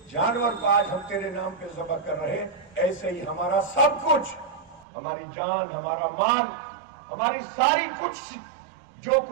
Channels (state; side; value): drops out; left; at 4.9 s